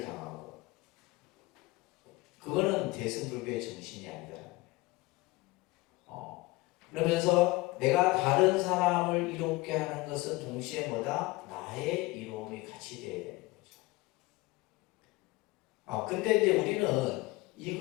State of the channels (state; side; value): quieter; right; 21.4 dB